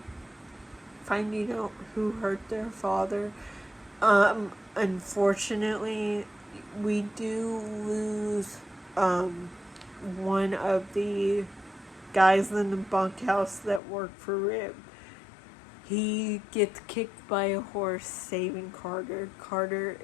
finding out who hurt their father. Unfortunately, we do lose one of the guys in the bunkhouse that work for Rib. He gets kicked by a horse saving Carter. Carter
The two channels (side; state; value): right; drops out; at 13.8 s